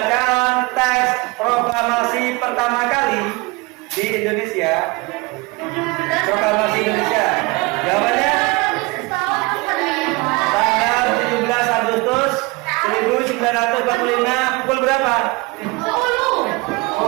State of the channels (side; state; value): left; quieter; 25.3 dB